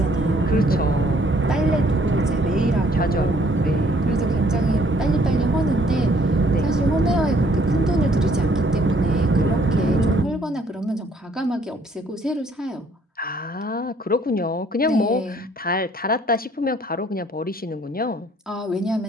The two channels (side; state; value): both; normal; correlation 0.63